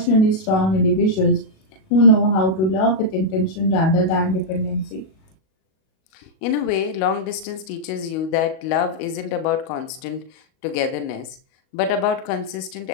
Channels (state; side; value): late; right; 38 ms